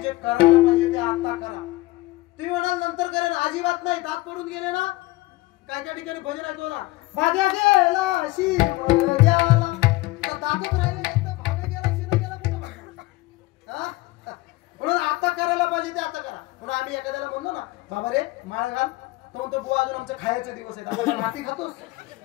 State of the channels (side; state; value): right; quieter; 20.0 dB